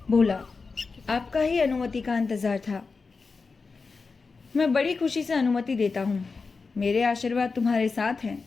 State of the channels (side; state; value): right; quieter; 4.5 dB